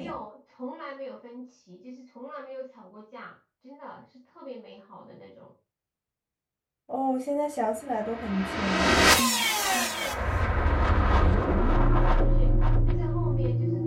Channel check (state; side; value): identical; both; correlation 1.00